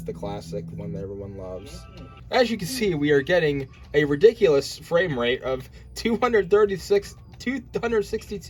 classic, the one that everyone loves. As you can see, we are getting a ridiculous frame rate of 262.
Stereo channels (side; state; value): both; identical; correlation 1.00